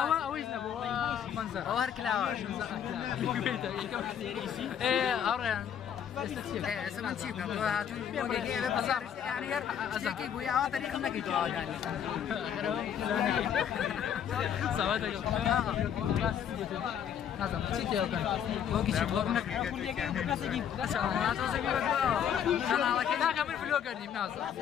اويز نبو منظر او هر كلاوه ايه اوريان ئێستا من چی بکەم هاتوون يعني شتێکی بووی ئەوە تەریقم نەکەیت يعني نازم چی تێوەکەن وەکی چی بڵۆگ ناکە من فلۆگەر نیم نازم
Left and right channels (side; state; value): right; quieter; 8.9 dB